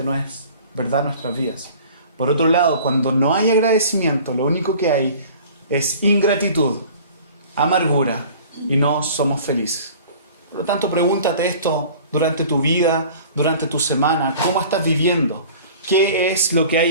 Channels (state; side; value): inverted; both; correlation -0.45